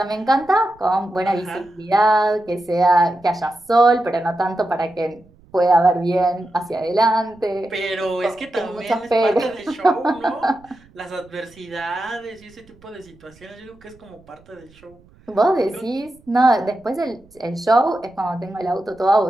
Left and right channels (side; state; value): right; noise; rumble, 28 dB below the sound